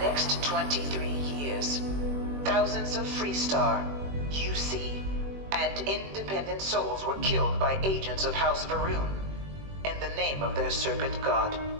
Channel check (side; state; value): left; late; 21 ms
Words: 23 years, thousands of Freestar, UC, and independent souls were killed by agents of House Varun in the name of their serpent god.